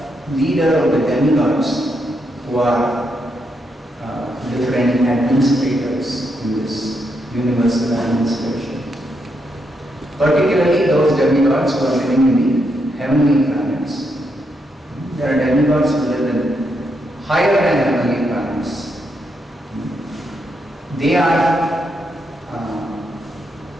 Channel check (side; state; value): both; normal; correlation 0.80